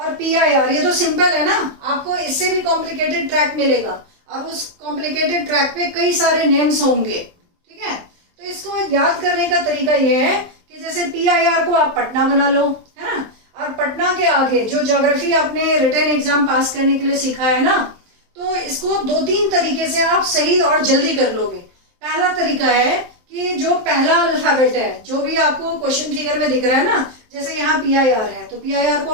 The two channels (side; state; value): left; late; 23 ms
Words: PIR, ये तो सिंपल है ना। आपको इससे भी कॉम्प्लिकेटेड ट्रैक मिलेगा, और उस कॉम्प्लिकेटेड ट्रैक पे कई सारे नेम्स होंगे, ठीक है। तो इसको याद करने का तरीका ये है कि जैसे PIR को आप पटना बना लो, है ना, और पटना के आगे जो ज्योग्राफी आपने रिटन एग्जाम पास करने के लिए सीखा है ना, तो इसको 2-3 तरीके से आप सही और जल्दी कर लोगे। पहला तरीका है कि जो पहला अल्फाबेट है, जो भी आपको क्वेश्चन फिगर में दिख रहा है ना, जैसे यहाँ PIR है तो PIR को